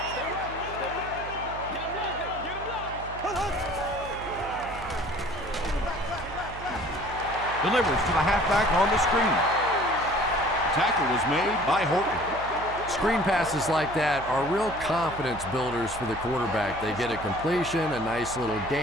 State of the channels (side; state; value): right; noise; hum, 13 dB below the sound